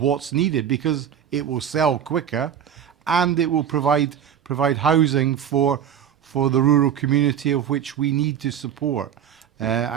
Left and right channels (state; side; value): quieter; left; 9.0 dB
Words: needed, because it will sell quicker and it will provide housing for the rural community of which we need to support.